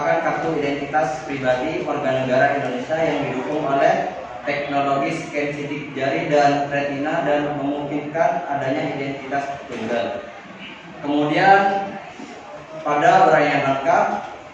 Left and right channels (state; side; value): identical; both; correlation 1.00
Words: kartu identitas pribadi warga negara Indonesia yang didukung oleh teknologi scan sidik jari dan retina dan memungkinkan adanya identitas tunggal. Kemudian pada uraian langkah